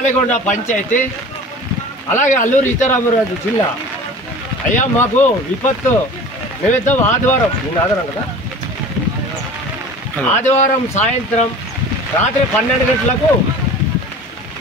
పంచాయతీ, అలాగే అల్లూరు సీతారామరాజు జిల్లా. అయ్యా మాకు విపత్తు నిమిత్తం ఆదివారం కదా, ఆదివారం సాయంత్రం రాత్రి 12 గంటలకు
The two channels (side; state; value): both; normal; correlation 0.39